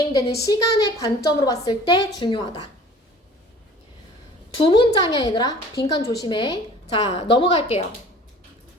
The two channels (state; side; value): normal; both; correlation 0.47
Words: 시간의 관점으로 봤을 때 중요하다. 두 문장이야, 얘들아. 빈칸 조심해. 자, 넘어갈게요.